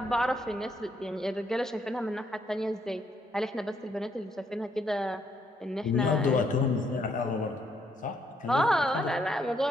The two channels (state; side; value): normal; both; correlation 0.72